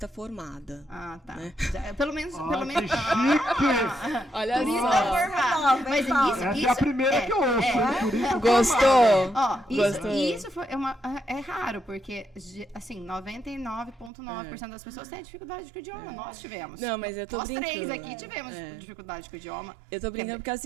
formada. Ah, tá. Né? Pelo menos... Que chique! Olha Turista só. formada. Mas Essa é a primeira que eu ouço, hein? Turista Gostou? Ó, Gostou? isso é raro, porque, assim, 99,9% das pessoas têm dificuldade com o idioma. Nós tivemos. Não, mas eu tô Nós brincando. três aqui tivemos dificuldade com o idioma. Eu tô brincando porque é o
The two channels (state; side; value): drops out; left; at 14.1 s